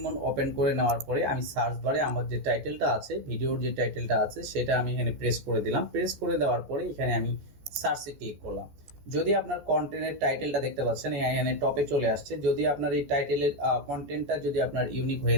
মোড ওপেন করে নেওয়ার পরে আমি সার্চ বারে আমার যে টাইটেলটা আছে, ভিডিওর যে টাইটেলটা আছে সেটা আমি এখানে প্রেস করে দিলাম। প্রেস করে দেওয়ার পরে এখানে আমি সার্চে ক্লিক করলাম। যদি আপনার কন্টেন্টের টাইটেলটা দেখতে পাচ্ছেন এখানে টপে চলে আসছে, যদি আপনার এই টাইটেলের কন্টেন্টটা যদি আপনার ইউনিক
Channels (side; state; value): left; late; 14 ms